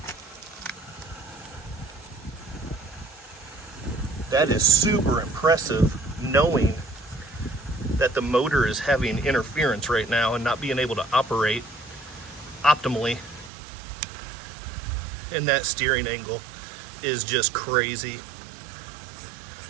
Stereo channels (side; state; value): left; drops out; at 13.5 s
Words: That is super impressive, knowing that the motor is having interference right now and not being able to operate optimally. And that steering angle is just crazy.